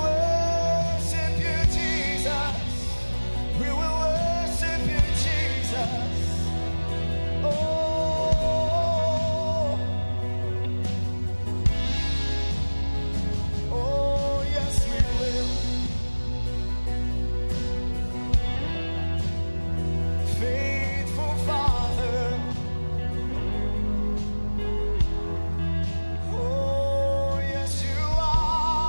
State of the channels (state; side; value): inverted; both; correlation -1.00